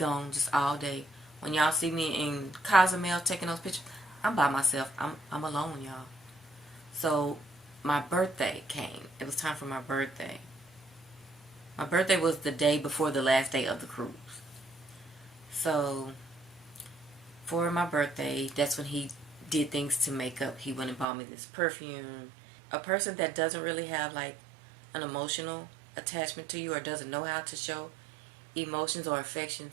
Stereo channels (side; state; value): left; drops out; at 21.1 s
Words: just all day. When y'all see me in Cozumel taking those pictures, I'm by myself. I'm alone, y'all. So my birthday came. It was time for my birthday. My birthday was the day before the last day of the cruise. So for my birthday, that's when he did things to make up. He went and bought me this perfume. A person that doesn't really have like an emotional attachment to you or doesn't know how to show emotions or